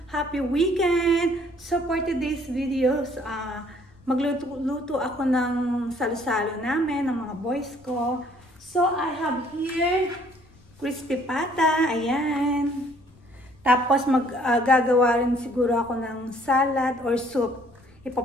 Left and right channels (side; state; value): left; noise; rumble, 28 dB below the sound